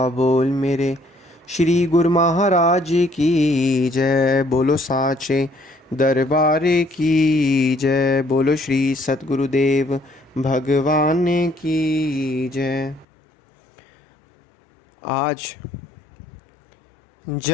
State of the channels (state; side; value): drops out; right; at 13.1 s